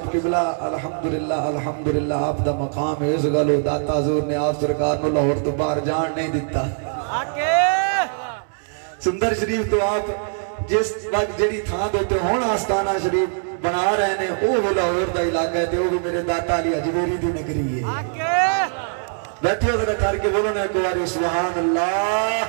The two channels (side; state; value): left; silent; 64 dB below the other